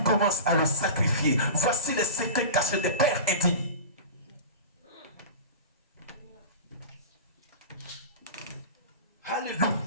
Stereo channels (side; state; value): both; inverted; correlation -0.31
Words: commence à le sacrifier. Voici les secrets cachés des pères indignes. Alléluia.